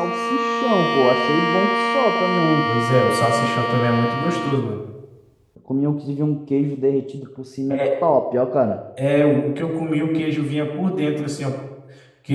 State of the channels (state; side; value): identical; both; correlation 1.00